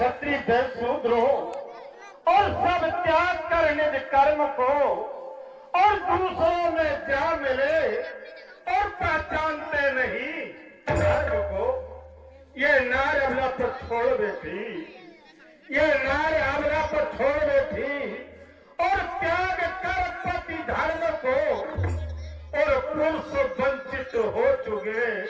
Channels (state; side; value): identical; both; correlation 1.00